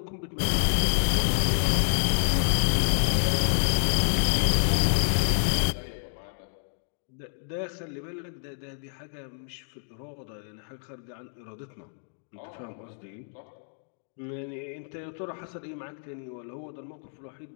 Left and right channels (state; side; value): silent; right; digital silence